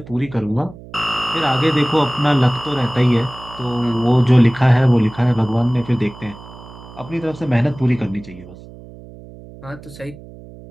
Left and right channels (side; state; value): right; noise; hum, 18 dB below the sound